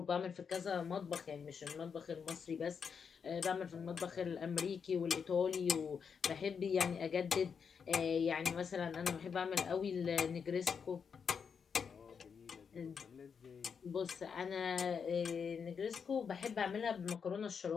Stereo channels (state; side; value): quieter; right; 6.4 dB